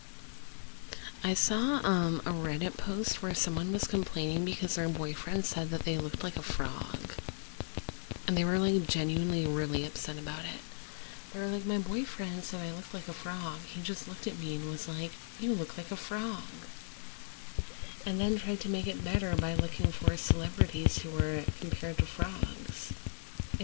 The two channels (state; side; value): silent; right; digital silence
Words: I saw a Reddit post where someone was complaining because their boyfriend said that they looked like a frog. And they were like genuinely really upset about it. They were like, my boyfriend said I looked like a frog. He just looked at me and was like, you look like a frog. And then tried to make it better by looking for celebrities who were compared to frogs.